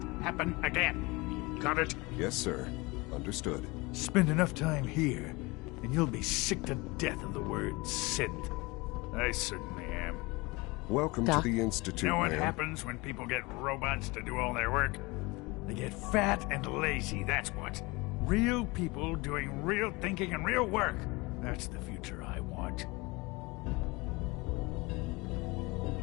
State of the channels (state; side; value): quieter; right; 24.4 dB